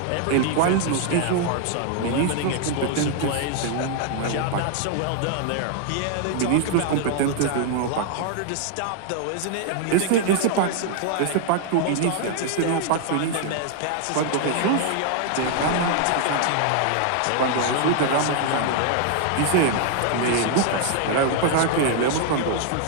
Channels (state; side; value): different; both; correlation 0.00